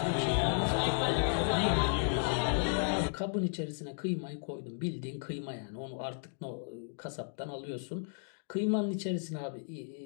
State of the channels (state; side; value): silent; right; digital silence